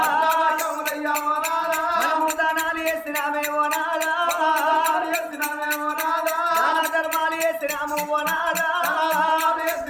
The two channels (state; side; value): identical; both; correlation 1.00